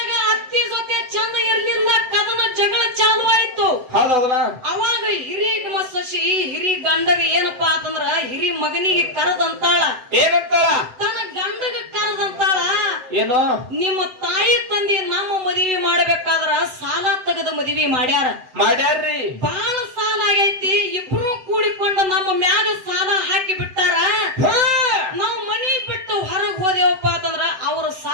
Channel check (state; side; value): late; left; 7.7 ms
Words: ಅತ್ತಿ ಜೊತೆ ಚಂದ ಇರ್ಲಿಲ್ಲ, ಕದನ ಜಗಳ ಚಾಲು ಆಯ್ತು. ಹೌದೌದಲ್ಲ? ಅವಾಗ ಹಿರಿ ಸೊಸಿ ಹಿರಿ ಗಂಡಗ ಏನಪ್ಪಾ ಅಂತಂದ್ರ ಹಿರಿ ಮಗನಿಗೆ ಕರದಂತಾಳ. ಏನಂತಾಳ? ತನ್ನ ಗಂಡಗ ಕರದಂತಾಳ, ಏನು ನಿಮ್ಮ ತಾಯಿ ತಂದಿ ನಮ್ಮ ಮದುವೆ ಮಾಡ್ಬೇಕಾದ್ರ ಸಾಲ ತೆಗೆದ ಮದುವೆ ಮಾಡ್ಯಾರ್ರಿ. ಬಾಳ ಸಾಲ ಆಗೈತಿ. ಇಬ್ರು ಕೂಡಿಕೊಂಡು ನಮ್ಮ ಮ್ಯಾಗ ಸಾಲ ಹಾಕಿ ಬಿಟ್ಟಾರ. ನಾವು ಮನಿ ಬಿಟ್ಟು ಹೊರಗ್ ಹೋದೇವಪ್ಪ ಅಂತಂದ್ರ ಅವ್ರ